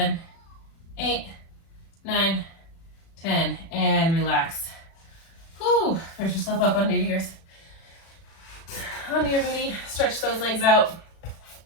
8, 9, 10, and relax. Whew, push yourself up onto your booty, stretch those legs out.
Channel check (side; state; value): right; late; 36 ms